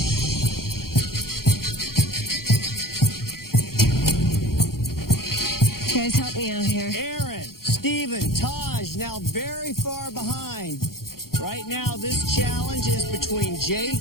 Guys, help me out here. Aaron, Steven, Taj now very far behind. Right now, this challenge is between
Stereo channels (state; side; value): late; right; 0.93 ms